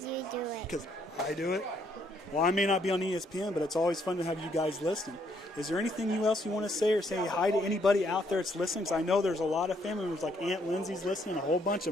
you do it. Because I do it. Well, I may not be on ESPN, but it's always fun to have you guys listen. Is there anything else you want to say or say hi to anybody out there that's listening? Because I know there's a lot of family members, like Aunt Lindsay's listening. A whole bunch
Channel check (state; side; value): normal; both; correlation 0.70